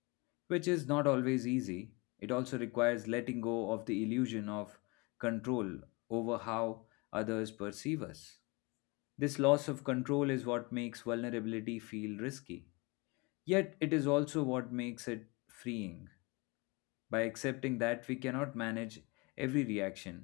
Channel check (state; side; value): quieter; right; 26.8 dB